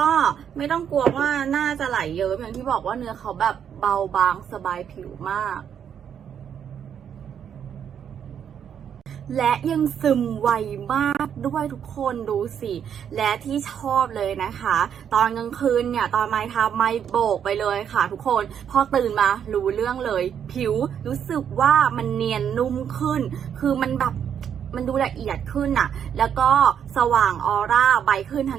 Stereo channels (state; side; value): quieter; left; 8.5 dB